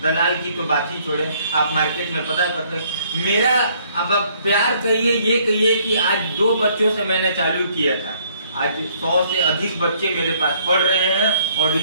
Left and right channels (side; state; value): both; inverted; correlation -0.63